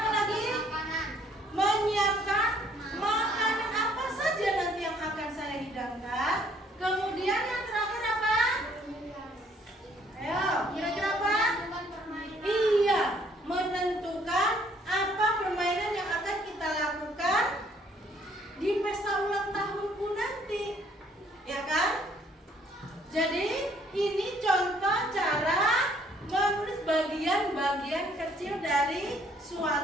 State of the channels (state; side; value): normal; both; correlation 0.63